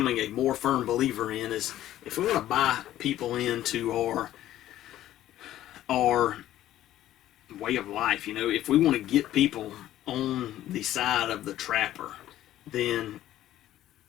a more firm believer in is, if we want to buy people into our way of life, if we want to get people on the side of the trapper, then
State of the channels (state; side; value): quieter; right; 13.3 dB